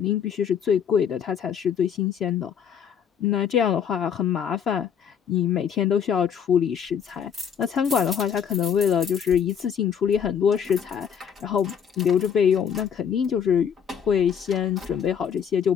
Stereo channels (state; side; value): quieter; right; 7.9 dB